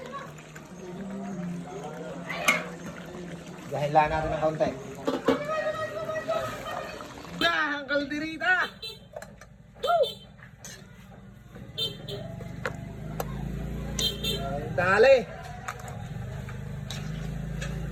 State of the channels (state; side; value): identical; both; correlation 1.00